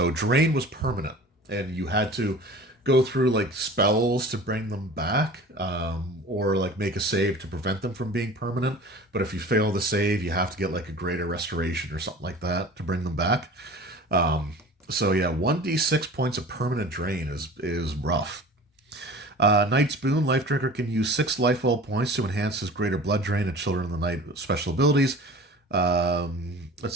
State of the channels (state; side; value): normal; both; correlation 0.41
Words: Drain was permanent, and you had to go through like spells to bring them back, or like make a save to prevent them from being permanent. But if you fail the save, you have to get like a greater restoration or something like that to bring them back. So yeah, 1d6 points of permanent drain is rough. Knight's Boon, Life Drinker can use 6 life well points to enhance his Greater Blood Drain and Children of the Night special abilities.